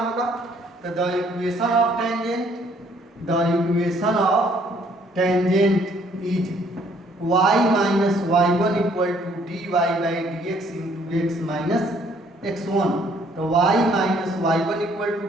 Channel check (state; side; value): normal; both; correlation 0.63